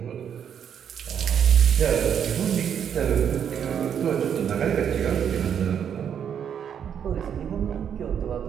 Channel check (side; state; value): left; quieter; 8.4 dB